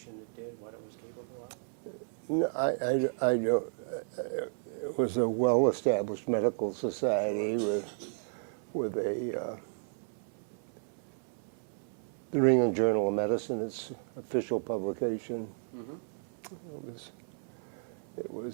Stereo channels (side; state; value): left; silent; 56 dB below the other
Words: it did, what it was capable of? No, I don't. It was a well-established medical society with a the New England Journal of Medicine, its official publication. Mm-hmm. It